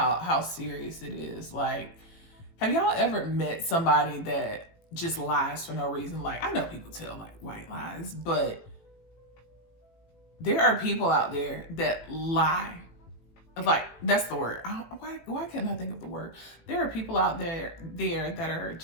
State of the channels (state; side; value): late; right; 18 ms